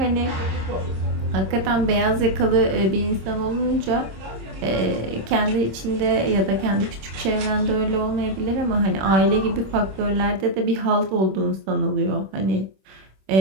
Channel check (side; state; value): left; late; 26 ms